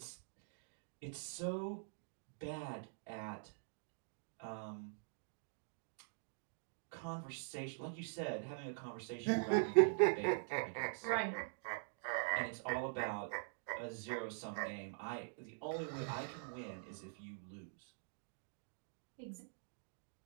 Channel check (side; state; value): left; silent; digital silence